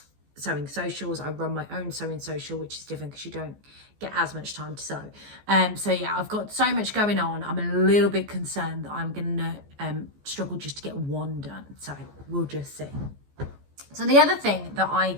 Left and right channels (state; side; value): late; left; 14 ms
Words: sewing socials. I run my own sewing social, which is different because you don't get as much time to sew. So yeah, I've got so much going on. I'm a little bit concerned that I'm gonna struggle just to get one done. So we'll just see. So the other thing that I